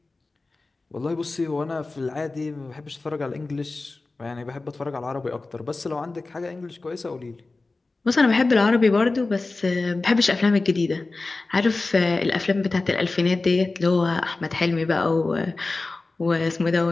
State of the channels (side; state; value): right; quieter; 3.5 dB